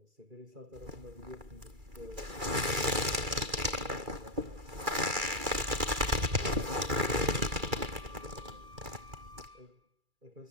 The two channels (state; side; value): late; left; 2.3 ms